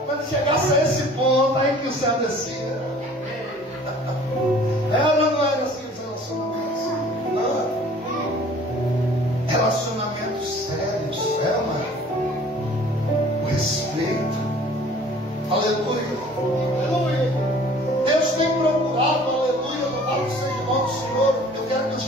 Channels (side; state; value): both; normal; correlation 0.50